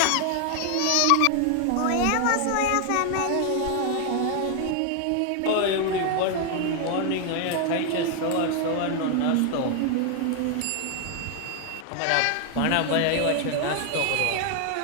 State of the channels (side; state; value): both; different; correlation 0.00